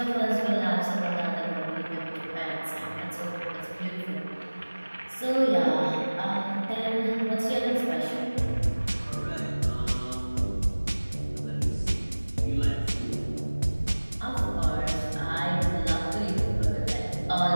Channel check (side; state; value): both; inverted; correlation -1.00